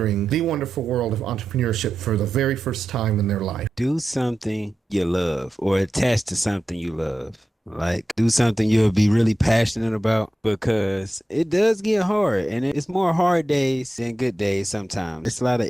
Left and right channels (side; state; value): both; normal; correlation 0.91